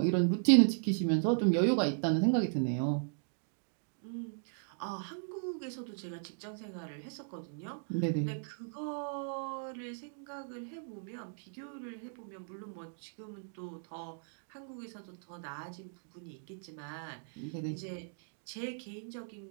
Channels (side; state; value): left; silent; digital silence